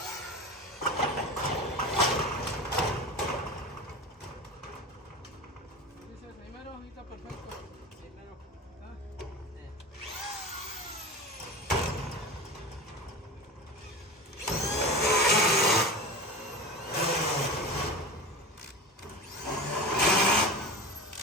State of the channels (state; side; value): normal; both; correlation 0.30